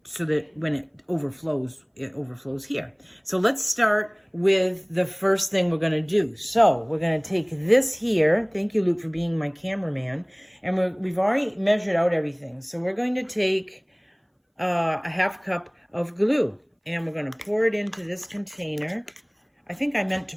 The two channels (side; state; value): both; identical; correlation 1.00